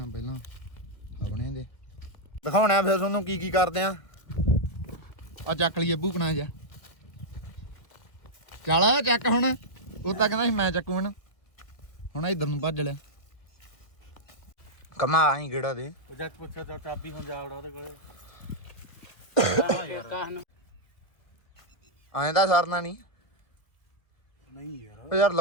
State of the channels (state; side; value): late; right; 1.5 ms